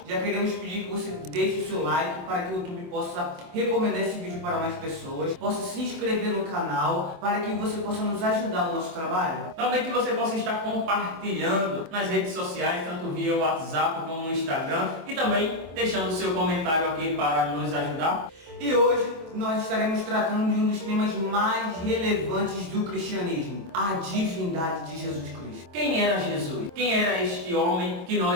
já queremos pedir que você deixe o seu like para que o YouTube possa recomendar esse vídeo para mais pessoas, possa se inscrever no canal para que você possa nos ajudar no nosso trabalho. Também que você possa estar compartilhando nas redes sociais, tanto via WhatsApp como no Instagram, e também deixando o seu comentário aqui para nos ajudar. E hoje nós estaremos tratando de um dos temas mais relevantes do cristianismo, a divindade de Jesus Cristo. Quem era Jesus? Quem era este homem que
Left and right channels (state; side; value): late; left; 25 ms